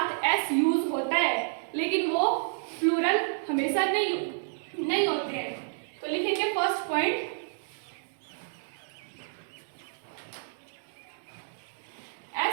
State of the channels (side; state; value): left; silent; digital silence